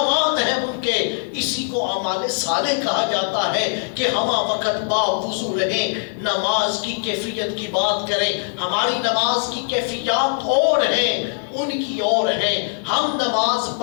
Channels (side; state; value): right; silent; digital silence